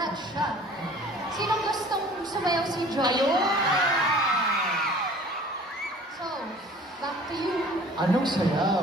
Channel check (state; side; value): normal; both; correlation 0.48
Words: siya. Sinong gustong sumayaw si Joy? Ayun! So, back to you. Anong sayaw?